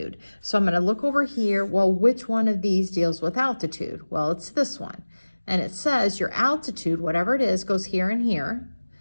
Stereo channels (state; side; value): inverted; both; correlation -1.00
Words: So I'm going to look over here. Well, which one of these deals with altitude? Well, it's this one. And it says your altitude, whatever it is, goes here and here.